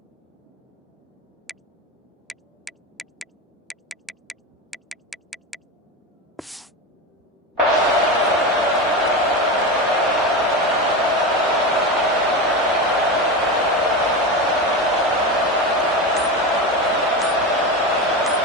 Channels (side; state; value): both; normal; correlation 0.21